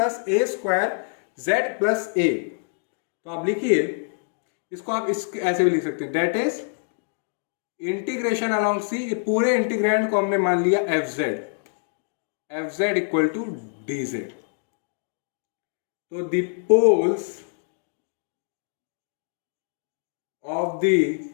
A square Z plus ए। तो आप लिखिए इसको, आप इस ऐसे भी लिख सकते हैं, that is integration along C, पूरे इंटीग्रैंड को हमने मान लिया F Z equal to D Z. तो the poles of the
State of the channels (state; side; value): silent; right; digital silence